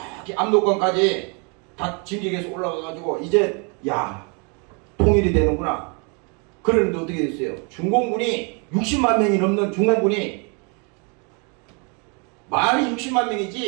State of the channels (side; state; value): left; quieter; 34.7 dB